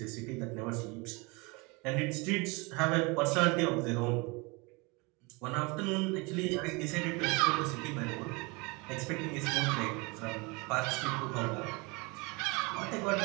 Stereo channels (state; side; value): quieter; left; 27.5 dB